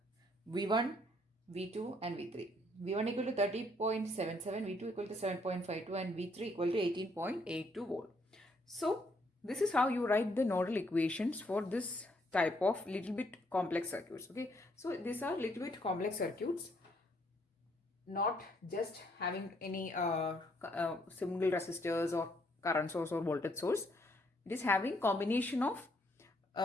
V1, V2 and V3. V1 equal to 30.77, V2 equal to 7.52 and V3 equal to 18.82 volt. So this is how you write the nodal equations for this type of little bit complex circuits. Okay, so these are little bit complex circuits, not just having any single resistors or current source or voltage source. It is having combination of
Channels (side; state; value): both; normal; correlation 0.69